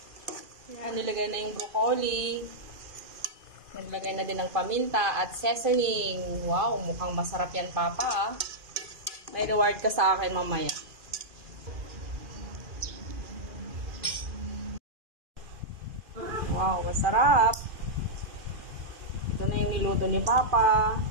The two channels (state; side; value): late; left; 2.4 ms